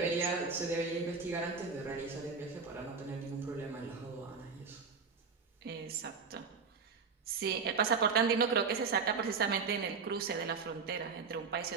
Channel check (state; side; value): quieter; left; 5.2 dB